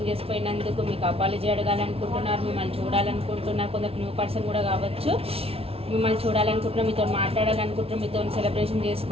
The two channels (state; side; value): late; left; 0.28 ms